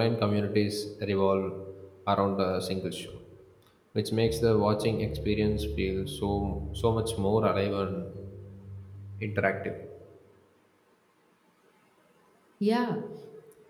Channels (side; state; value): both; identical; correlation 1.00